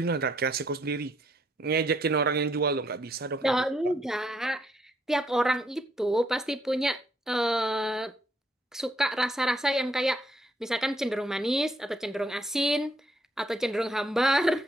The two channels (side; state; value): both; normal; correlation 0.71